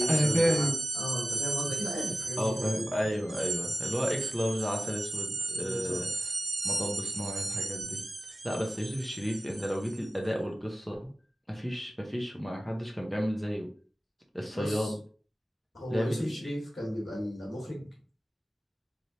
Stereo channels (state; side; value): normal; both; correlation 0.95